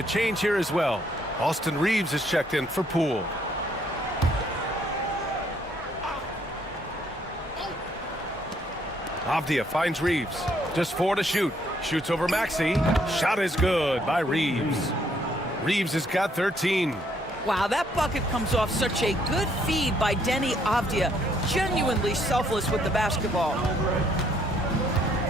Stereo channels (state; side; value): normal; both; correlation 0.68